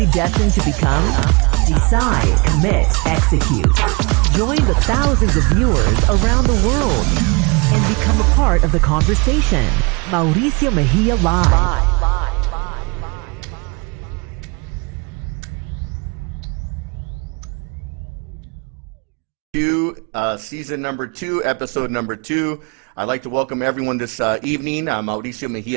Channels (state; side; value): quieter; left; 29.7 dB